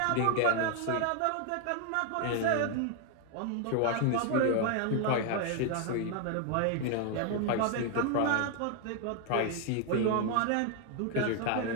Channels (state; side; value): different; both; correlation 0.01